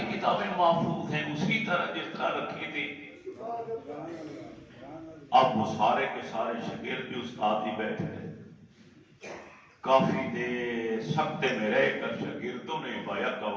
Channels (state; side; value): identical; both; correlation 1.00